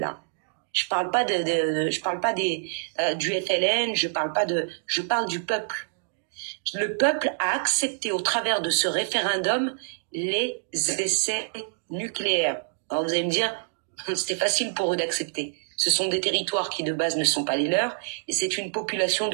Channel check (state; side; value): silent; left; digital silence